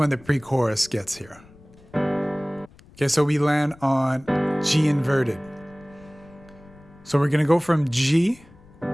the pre-chorus gets here. Okay, so we land on G inverted. So we're gonna go from G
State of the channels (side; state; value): left; noise; rumble, 24 dB below the sound